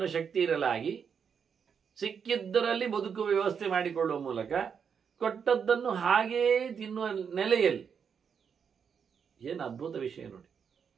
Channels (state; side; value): quieter; left; 6.9 dB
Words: ಶಕ್ತಿ ಇರಲಾಗಿ ಸಿಕ್ಕಿದ್ದರಲ್ಲಿ ಬದುಕುವ ವ್ಯವಸ್ಥೆ ಮಾಡಿಕೊಳ್ಳುವ ಮೂಲಕ ಕೊಟ್ಟದ್ದನ್ನು ಹಾಗೇ ತಿನ್ನುವ ನೆಲೆಯಲ್ಲಿ. ಏನು ಅದ್ಭುತ ವಿಷಯ ನೋಡಿ.